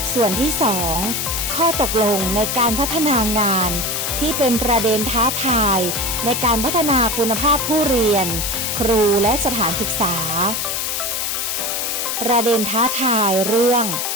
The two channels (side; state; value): left; noise; hiss, 1 dB below the sound